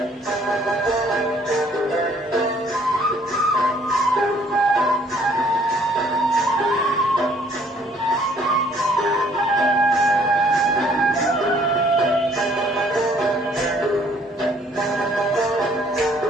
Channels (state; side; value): normal; both; correlation 0.61